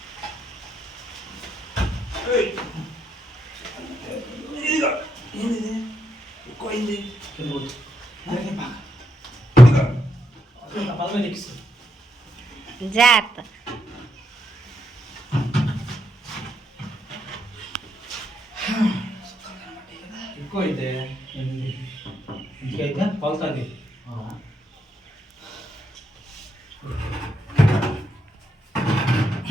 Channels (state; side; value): normal; both; correlation 0.81